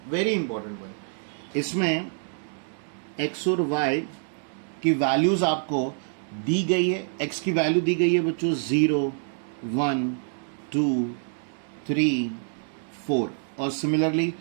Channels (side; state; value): left; silent; digital silence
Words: Very important one. इसमें x और y की वैल्यूज आपको दी गई है। x की वैल्यू दी गई है बच्चों 0, 1, 2, 3, 4, और सिमिलरली